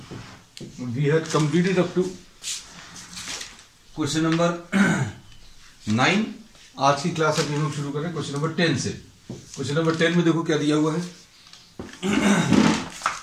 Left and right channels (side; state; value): both; identical; correlation 1.00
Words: we had completed up to question number 9. आज की क्लास अब हम लोग शुरू करें क्वेश्चन नंबर 10 से. क्वेश्चन नंबर 10 में देखो क्या दिया हुआ है.